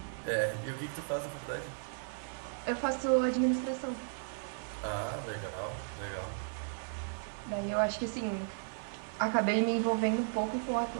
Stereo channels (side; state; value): left; silent; digital silence